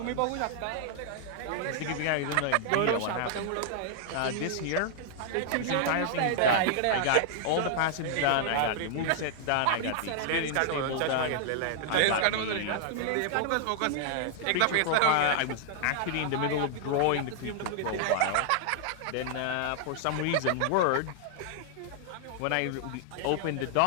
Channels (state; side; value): different; both; correlation -0.01